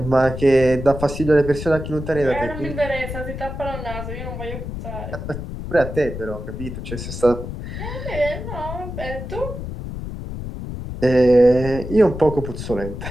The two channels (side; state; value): left; noise; rumble, 7 dB below the sound